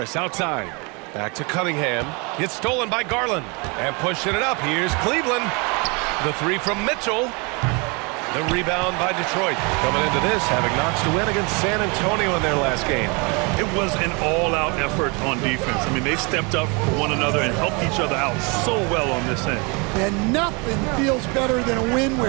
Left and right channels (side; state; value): left; quieter; 30.5 dB